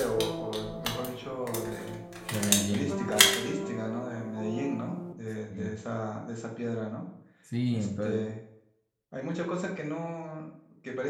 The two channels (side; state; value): both; identical; correlation 1.00